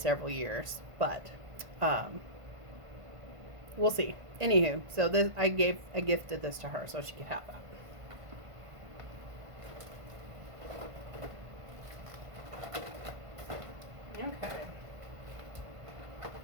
years, but we'll see. Anywho, so this I gifted this to her so she could have that. Okay.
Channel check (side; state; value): left; late; 1.5 ms